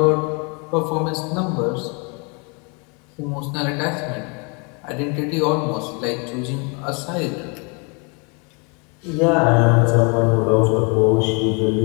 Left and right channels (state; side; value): quieter; right; 33.3 dB